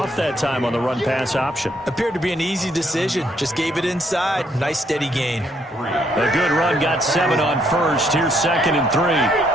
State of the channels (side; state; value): both; normal; correlation 0.71